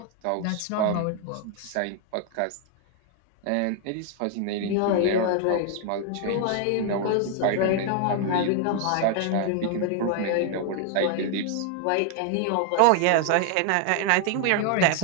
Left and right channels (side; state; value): both; different; correlation 0.00